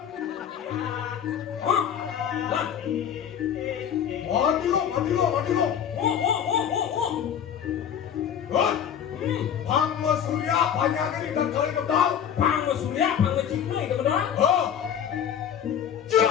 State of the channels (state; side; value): quieter; right; 8.8 dB